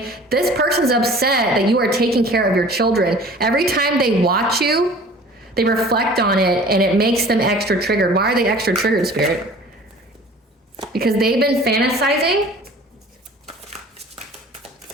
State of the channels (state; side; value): normal; both; correlation 0.46